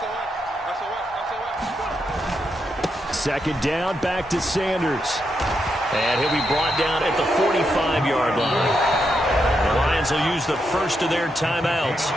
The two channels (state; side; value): normal; both; correlation 0.82